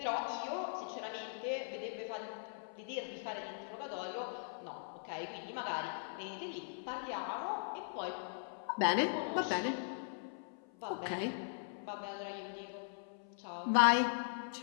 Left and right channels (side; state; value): right; silent; 51 dB below the other